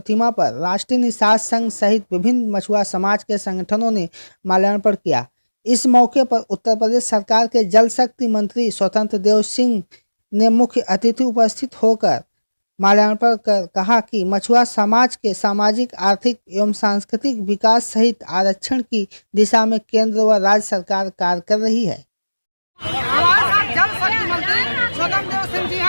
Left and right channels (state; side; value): inverted; both; correlation -1.00